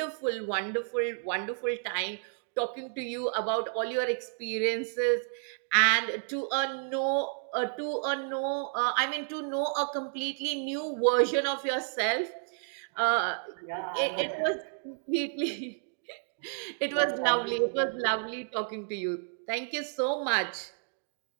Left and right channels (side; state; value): left; silent; digital silence